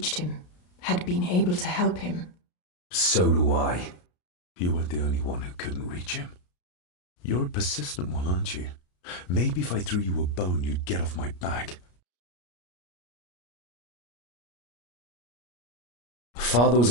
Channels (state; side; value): late; right; 33 ms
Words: him, had been able to help him. So do I. You weren't the only one who couldn't reach him. You're a persistent one, aren't you? Maybe if I threw you a bone, you'd get off my back. Father was